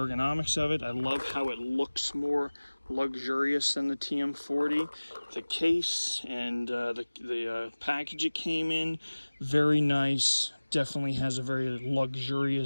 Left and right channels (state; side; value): inverted; both; correlation -1.00